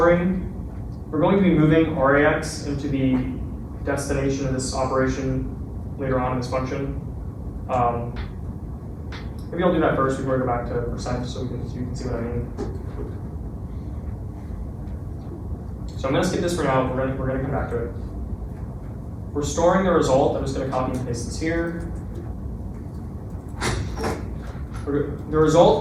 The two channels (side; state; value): both; identical; correlation 1.00